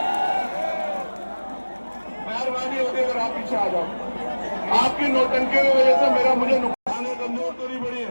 मेहरबानी होगी अगर आप पीछे आ जाओ। आपकी नौटंकी की वजह से मुझे नुकसान कमजोर तो नहीं बढ़ी है।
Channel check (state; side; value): inverted; both; correlation -1.00